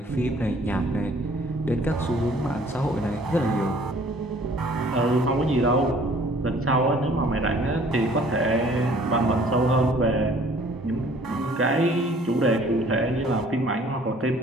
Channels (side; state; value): both; normal; correlation 0.56